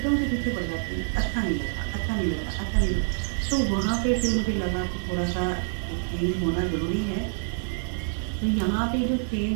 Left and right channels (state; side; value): silent; left; digital silence